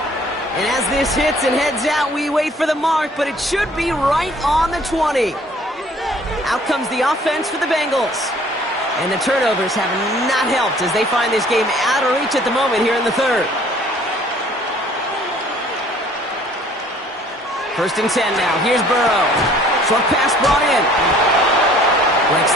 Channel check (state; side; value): normal; both; correlation 0.56